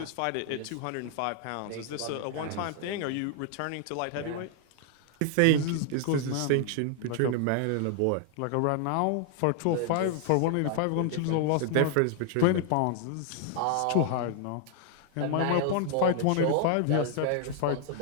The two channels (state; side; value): different; both; correlation 0.00